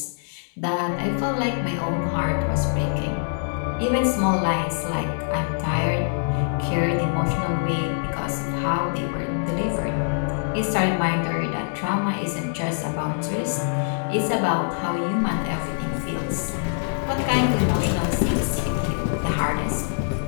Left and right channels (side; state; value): right; silent; digital silence